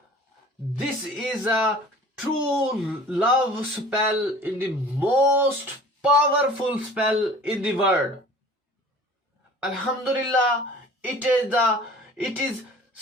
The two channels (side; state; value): both; normal; correlation 0.45